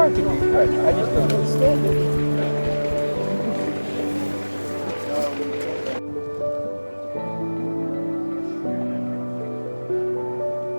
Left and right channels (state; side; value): inverted; both; correlation -1.00